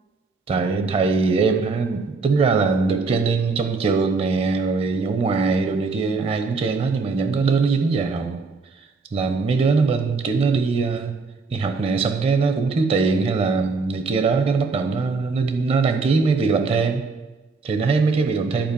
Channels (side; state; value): left; quieter; 4.2 dB